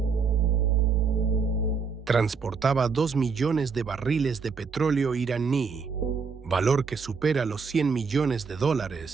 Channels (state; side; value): quieter; left; 5.3 dB